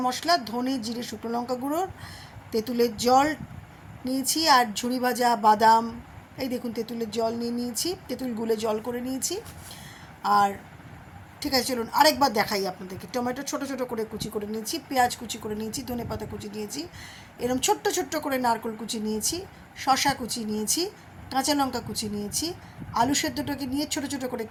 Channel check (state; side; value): identical; both; correlation 1.00